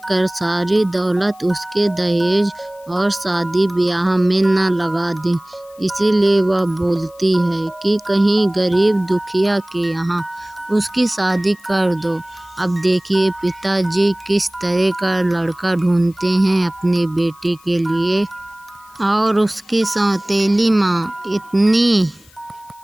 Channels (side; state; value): left; noise; hiss, 28 dB below the sound